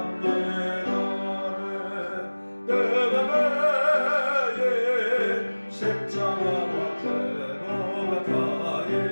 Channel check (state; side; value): inverted; both; correlation -1.00